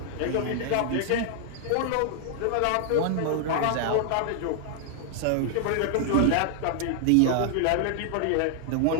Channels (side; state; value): both; different; correlation 0.00